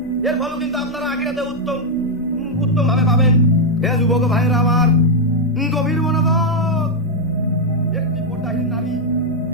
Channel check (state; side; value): normal; both; correlation -0.01